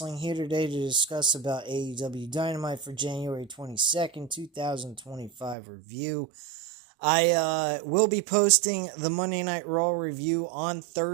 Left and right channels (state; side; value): drops out; left; at 5.6 s